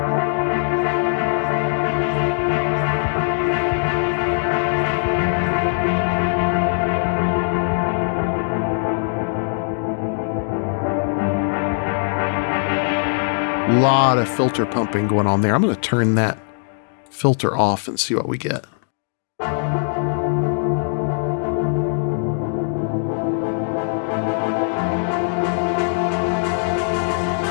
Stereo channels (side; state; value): right; silent; digital silence